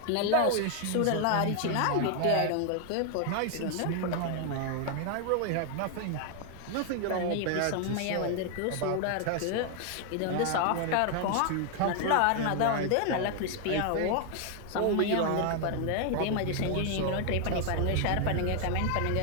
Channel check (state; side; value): different; both; correlation 0.00